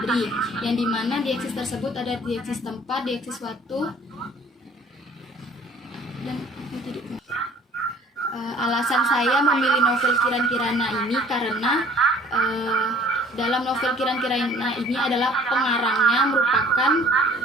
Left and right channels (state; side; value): normal; both; correlation 0.53